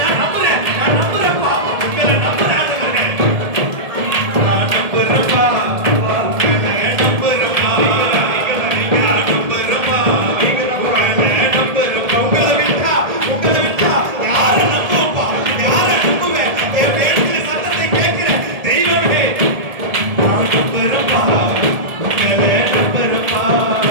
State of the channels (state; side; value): late; left; 1.7 ms